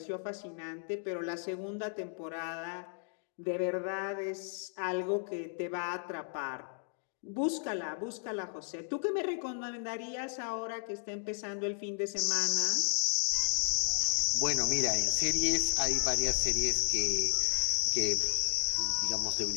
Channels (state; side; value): silent; right; 55 dB below the other